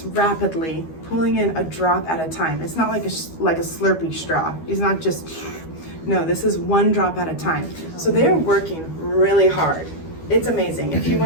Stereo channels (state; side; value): late; right; 12 ms